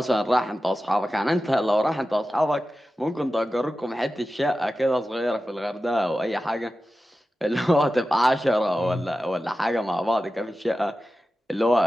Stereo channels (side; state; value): both; normal; correlation 0.93